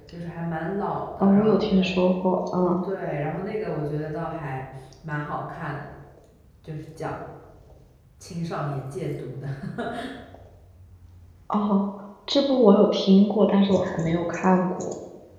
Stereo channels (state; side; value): identical; both; correlation 1.00